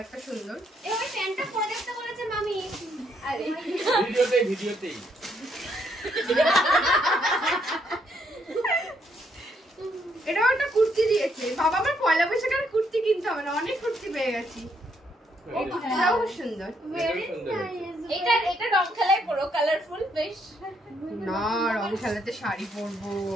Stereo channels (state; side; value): normal; both; correlation 0.73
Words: সুন্দর। এবার প্যান্টটা পরে দেখতে বলেছে মামি। আরে ভিডিওতেই এটাও একটা কুর্তি দিয়েছে। বাবা আমার পয়লা বৈশাখের কুর্তি কিনতে হবে না, অনেক কুর্তি পেয়ে গেছি। এই কুর্তিটাও খুব সুন্দর। এটা রং খেলায় পুরো কালারফুল বেশ। না রং খেলাতে শাড়ি পরবো,